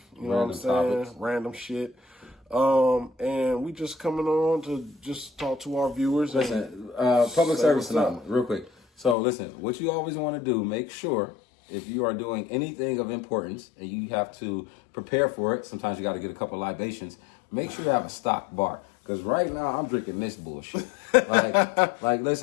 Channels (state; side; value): drops out; right; at 9.2 s